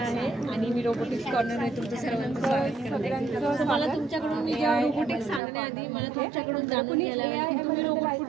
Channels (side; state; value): left; drops out; at 5.4 s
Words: आहे आणि मी रोबोटिक्स कॉर्नरमध्ये तुमचं सर्वांचं स्वागत करते। मला तुमच्याकडून मी जेव्हा रोबोटिक्स सांगण्याआधी मला तुमच्याकडून जाणून घ्यायला आहे तुम्ही